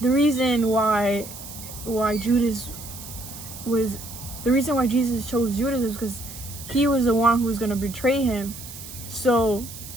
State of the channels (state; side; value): noise; right; hiss, 13 dB below the sound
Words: reason why Jesus chose Judas was because he was the one who was gonna betray him. So